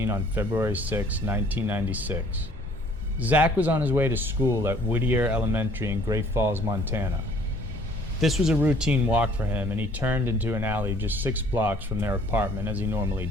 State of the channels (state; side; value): normal; both; correlation 0.57